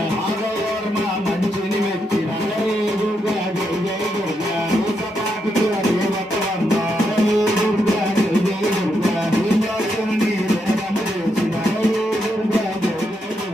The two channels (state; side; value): normal; both; correlation 0.81